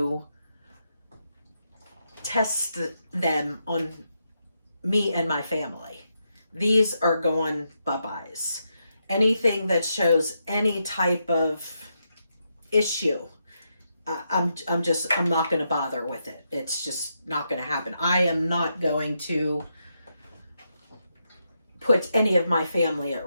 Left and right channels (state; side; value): inverted; both; correlation -0.83